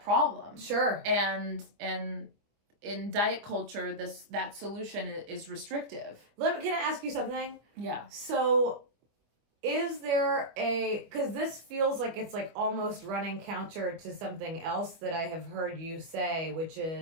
problem. Sure. And in diet culture, that solution is restrictive. Can I ask you something? Yeah. So, is there because this feels like it's like almost running counter to something else that I have heard you say, which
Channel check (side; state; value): left; late; 24 ms